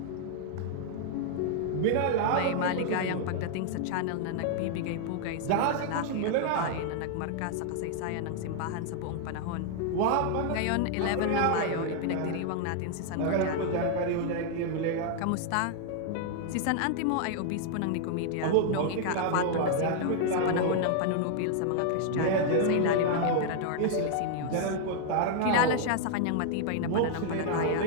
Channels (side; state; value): both; different; correlation 0.00